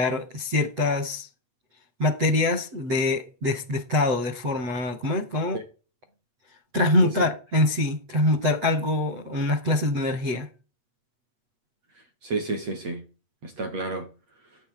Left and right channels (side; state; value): left; late; 8.3 ms